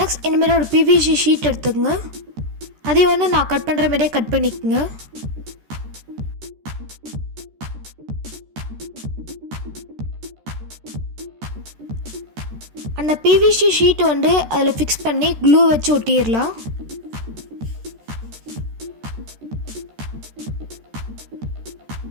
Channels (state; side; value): late; left; 13 ms